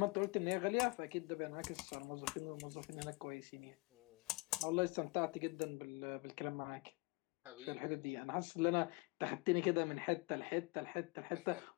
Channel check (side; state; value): right; quieter; 26.2 dB